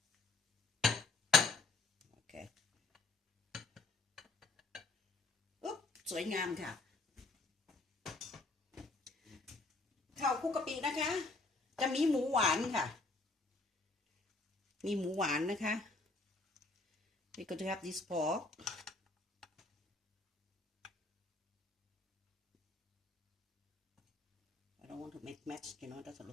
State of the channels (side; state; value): right; quieter; 3.2 dB